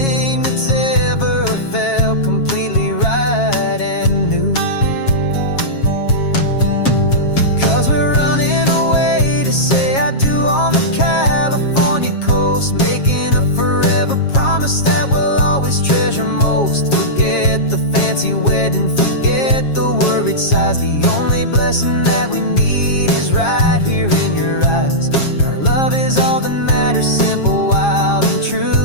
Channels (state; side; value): late; right; 7.4 ms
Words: that's ever felt completely right and new. 'Cause we're running away to say I do on the California coast, making a forever promise that we'll always treasure most. Forget the fancy wedding, forget the worried sighs. The only blessing that we need is right here in your eyes. Our love is all that matters, simple, wild, and